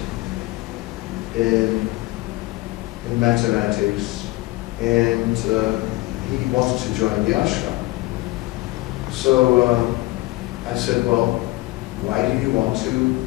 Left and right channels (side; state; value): right; quieter; 21.1 dB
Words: in mathematics, and he wanted to join the ashram. So I said, well, why do you want to